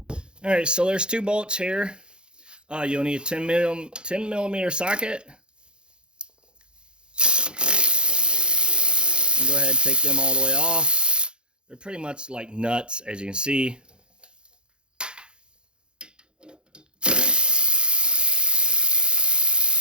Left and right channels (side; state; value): left; late; 0.050 ms